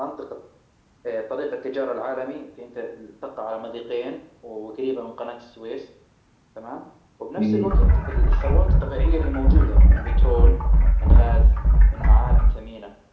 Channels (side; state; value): both; identical; correlation 1.00